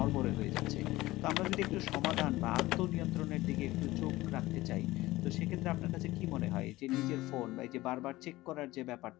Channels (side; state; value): right; quieter; 18.2 dB